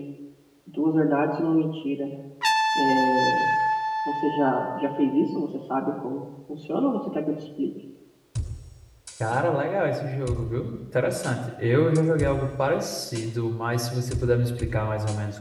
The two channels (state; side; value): identical; both; correlation 1.00